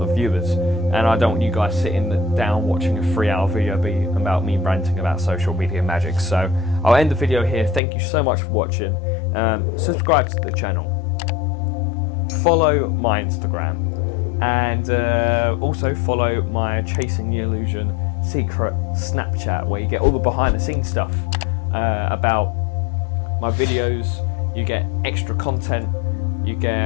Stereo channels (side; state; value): right; drops out; at 7.8 s